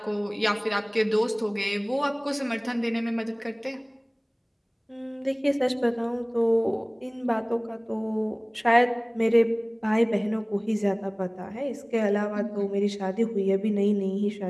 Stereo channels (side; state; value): both; identical; correlation 1.00